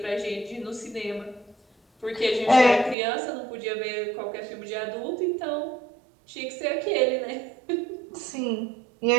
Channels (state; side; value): drops out; left; at 3.0 s